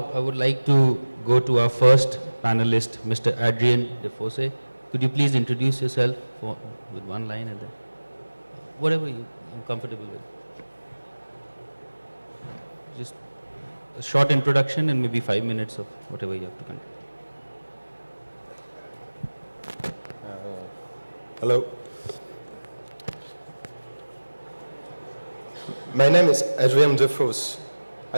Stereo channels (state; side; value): inverted; both; correlation -1.00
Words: I would like to go to our first panelist, Mr. Adrien Defosse. Could you please introduce yourself with one line and then whatever you're comfortable with. Just a short introduction and maybe 5 minutes of whatever you have to control. Hello. My name is Adrien Defosse.